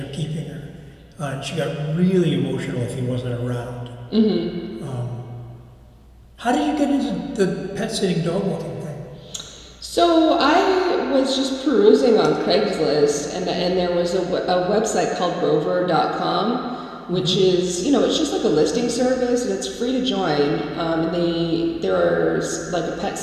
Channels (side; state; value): both; identical; correlation 1.00